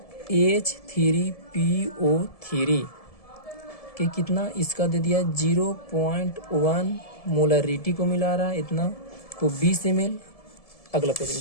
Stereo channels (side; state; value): right; late; 1.7 ms